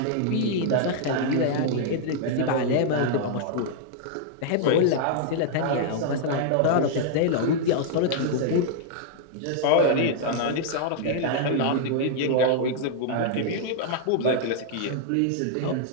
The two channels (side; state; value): both; different; correlation -0.01